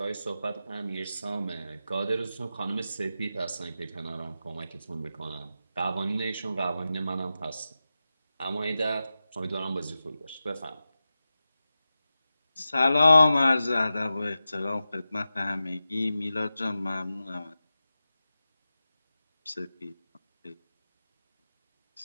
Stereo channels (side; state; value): both; inverted; correlation -0.93